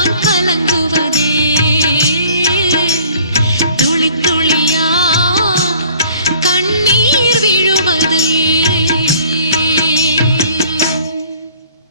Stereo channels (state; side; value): inverted; both; correlation -0.53